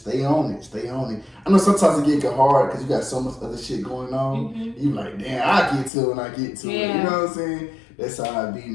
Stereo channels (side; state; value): right; drops out; at 5.9 s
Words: stay on it. I know sometimes it get hard because you got so much other shit going on. Mm-hmm. You like, damn, I get to it when I get to it. You know what I'm saying? That's how I be,